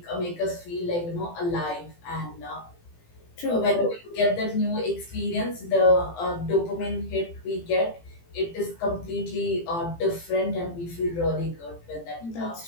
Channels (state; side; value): late; right; 18 ms